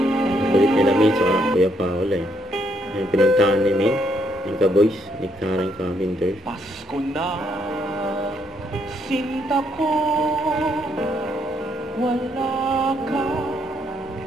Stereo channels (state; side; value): normal; both; correlation 0.73